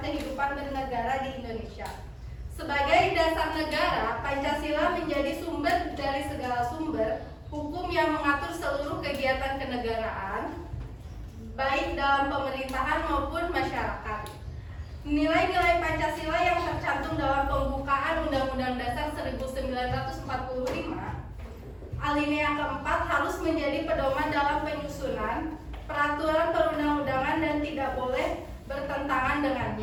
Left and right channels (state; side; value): identical; both; correlation 1.00